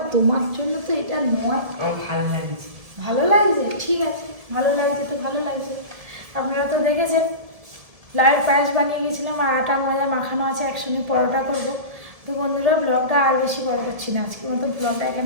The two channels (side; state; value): left; late; 1.7 ms